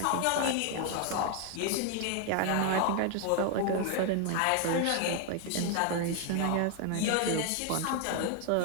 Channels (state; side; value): different; both; correlation 0.01